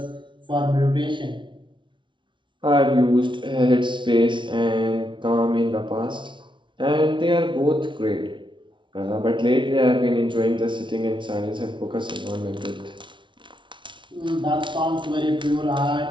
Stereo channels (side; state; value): left; late; 0.24 ms